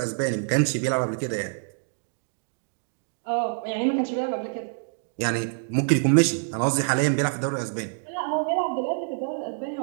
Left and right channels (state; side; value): silent; left; digital silence